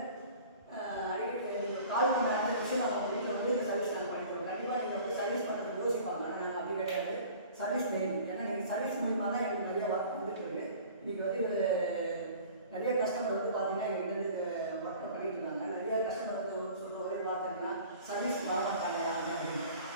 கால் பண்ண ஆரம்பிச்சு நம்ம வீட்டில் வந்து இந்த சர்வீஸ் நாங்கள் பண்ணிக்கிறோம். கண்டிப்பாக நீங்கள் வந்து சர்வீஸ் பண்ணுறதுக்கு யோசிப்பாங்க, ஆனால் நாங்கள் அப்படி கிடையாது. Service main. ஏன்னா நீங்கள் சர்வீஸ் மூலிமா தான் எங்களுக்கு நிறைய ஒர்க் வந்துட்டு இருக்கு. இன்றைக்கி வந்து நிறைய கஸ்டமர் வந்து பார்த்தீங்கன்னா எங்கிட்ட வந்து இந்த ஒர்க் பண்ணிட்டு இருக்காங்க. நிறைய கஸ்டமர் வந்து சொல்கிற ஒரே வார்த்தை என்னன்னா சர்வீஸ் வரமாட்டாங்க யாருமே அப்படின்னு.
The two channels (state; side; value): inverted; both; correlation -0.45